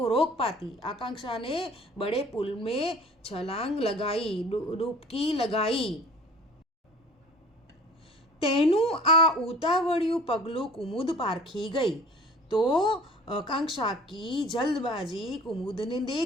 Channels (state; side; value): normal; both; correlation 0.47